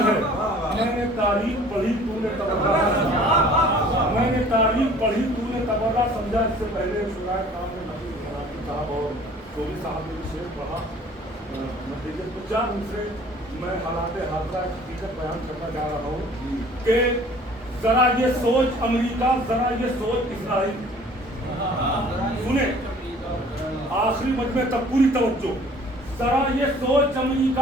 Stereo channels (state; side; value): normal; both; correlation 0.51